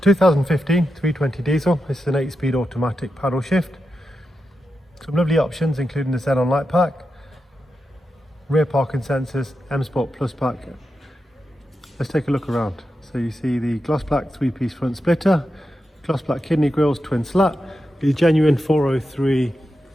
320 diesel, this is an 8-speed automatic paddle shift. Some lovely options including the xenon light pack, rear parking sensors, M Sport Plus pack. Let's take a look around. So you see the gloss black 3-piece front splitter, gloss black kidney grills, twin slat, the genuine 403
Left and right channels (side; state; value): both; normal; correlation 0.88